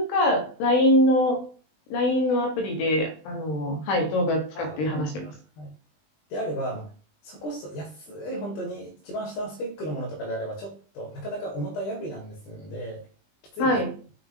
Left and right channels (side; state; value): right; late; 20 ms